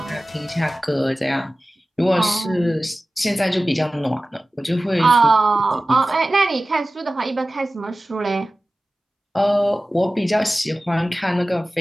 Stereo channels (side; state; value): both; normal; correlation 0.96